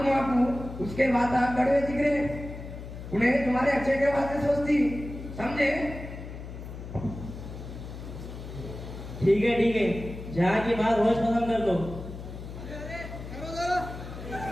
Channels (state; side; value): noise; left; hum, 11 dB below the sound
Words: आपको उसके बाद कड़वे दिख रहे, उन्हें तुम्हारे अच्छे के वास्ते सोचती, समझे? ठीक है, जहाँ की बात होश पसंद कर लो।